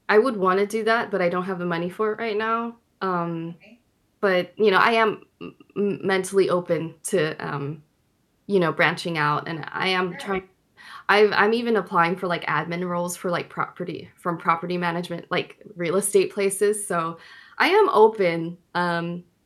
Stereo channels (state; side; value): identical; both; correlation 1.00